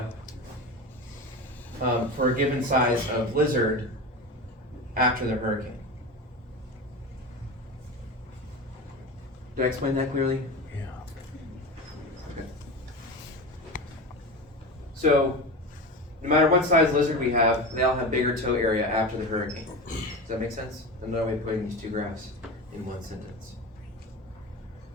for a given size of lizard after the hurricane. Did I explain that clearly? Yeah. Okay. So, no matter what size lizard we have, they all have bigger toe area after the hurricane. Does that make sense? Another way of putting these two graphs in one sentence.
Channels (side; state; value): both; normal; correlation 0.26